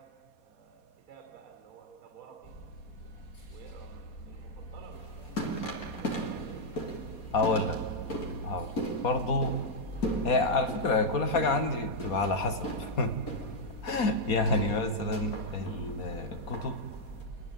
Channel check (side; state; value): right; late; 4.2 ms